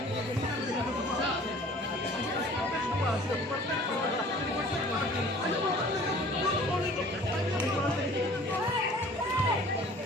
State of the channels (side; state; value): both; normal; correlation 0.49